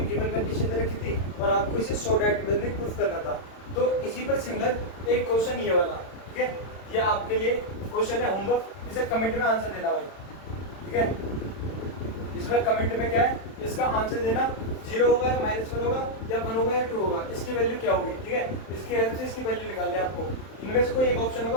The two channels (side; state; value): right; late; 31 ms